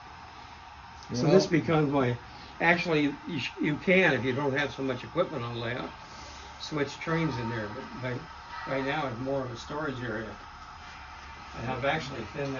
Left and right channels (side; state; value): both; identical; correlation 1.00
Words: So this becomes my. Actually, you can, if you don't have so much equipment on layout, switch trains in there. But right now it's more of a storage area, and I've actually thinned